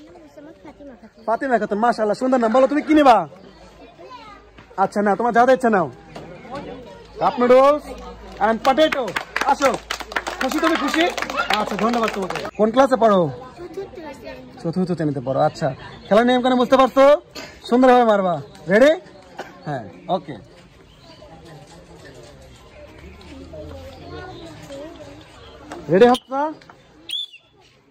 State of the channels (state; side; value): identical; both; correlation 1.00